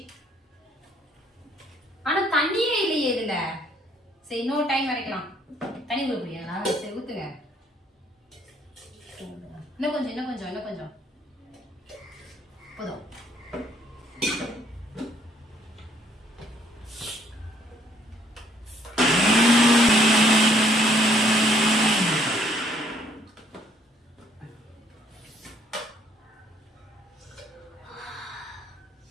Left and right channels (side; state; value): both; normal; correlation 0.65